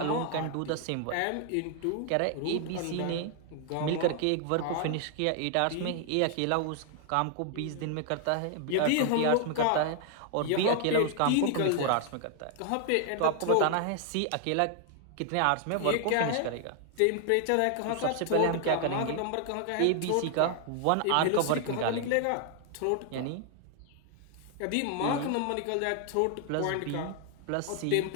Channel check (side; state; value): both; different; correlation 0.00